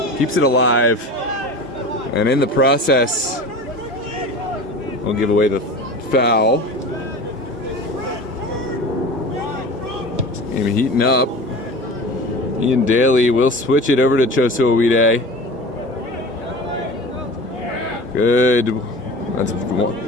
keeps it alive, and in the process will give away the foul. Game heating up. Ian Daly will switch it over to Choso Owide. Good. That's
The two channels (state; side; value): normal; both; correlation 0.35